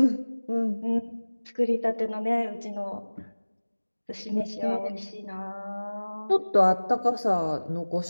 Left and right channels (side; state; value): both; inverted; correlation -1.00